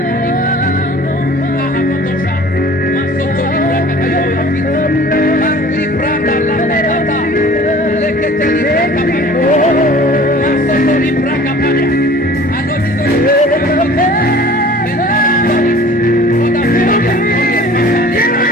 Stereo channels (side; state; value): both; normal; correlation 0.47